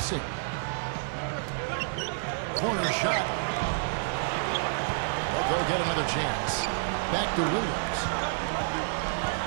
Corner shot. But they'll get another chance. Back to Williams.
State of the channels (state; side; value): silent; left; 55 dB below the other